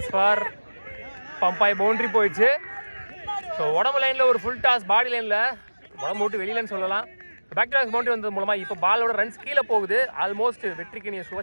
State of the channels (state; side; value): inverted; both; correlation -1.00